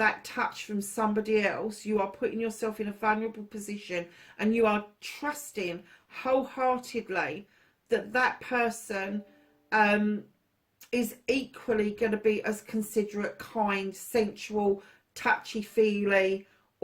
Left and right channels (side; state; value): both; identical; correlation 1.00